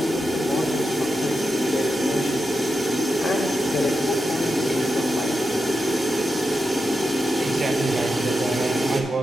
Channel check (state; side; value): normal; both; correlation 0.88